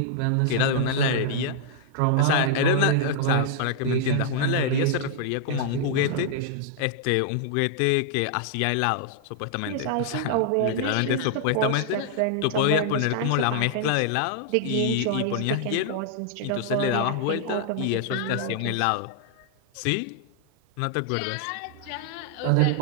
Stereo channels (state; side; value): different; both; correlation -0.01